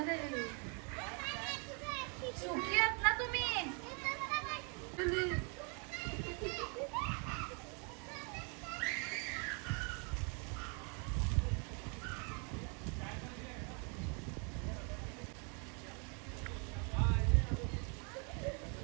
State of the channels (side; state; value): left; quieter; 35.9 dB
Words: देवी. सुकी आहेत ना तुम्ही.